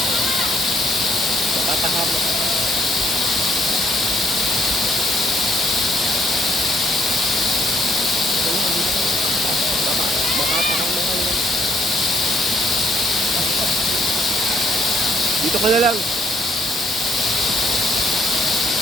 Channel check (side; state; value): both; normal; correlation 0.69